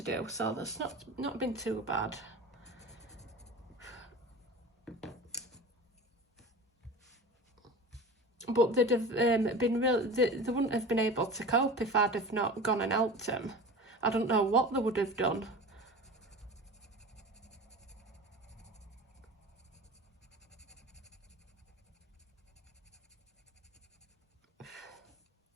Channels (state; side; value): normal; both; correlation 0.35